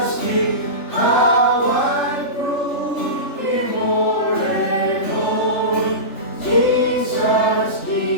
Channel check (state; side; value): late; right; 3.4 ms